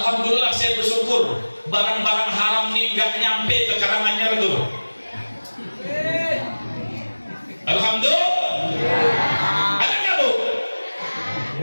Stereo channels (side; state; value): both; inverted; correlation -1.00